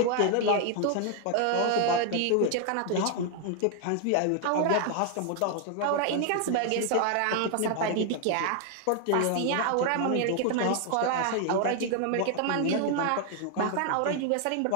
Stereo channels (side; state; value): both; different; correlation 0.00